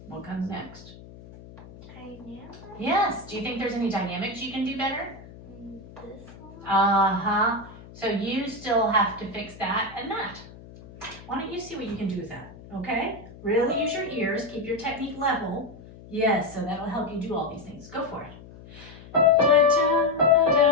What comes next? Dynamic. Yes. Do you think there's any dynamics you can do better? This one. Uh-huh. So you still have to fix that and that. Why don't you see what you can do with that, okay? Really use your ears, keep your technique level. Yes, so that'll help you do all these things. Go for it. One,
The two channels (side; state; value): left; noise; hum, 18 dB below the sound